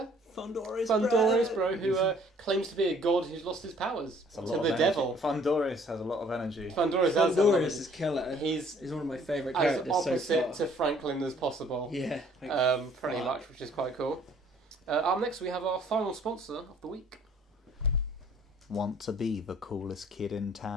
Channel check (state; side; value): normal; both; correlation 0.58